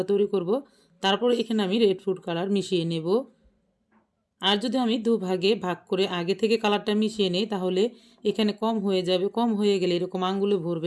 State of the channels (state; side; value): identical; both; correlation 1.00